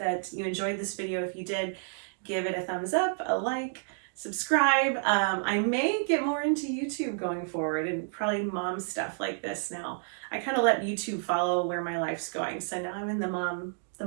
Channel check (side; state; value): left; silent; digital silence